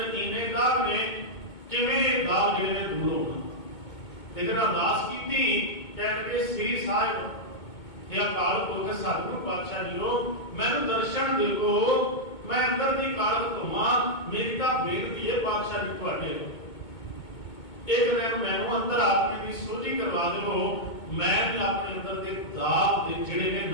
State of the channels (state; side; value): late; right; 2.2 ms